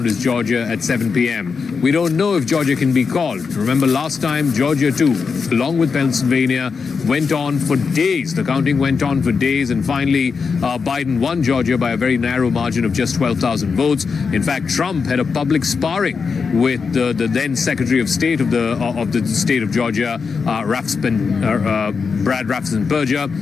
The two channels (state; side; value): quieter; right; 5.3 dB